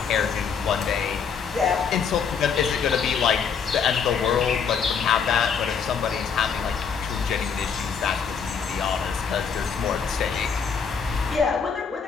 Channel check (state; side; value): quieter; right; 6.4 dB